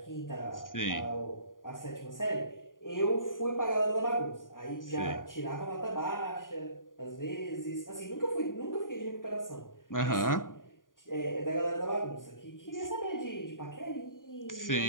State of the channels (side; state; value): right; late; 0.89 ms